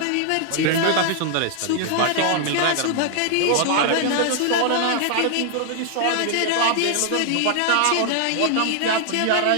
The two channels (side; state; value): both; different; correlation 0.00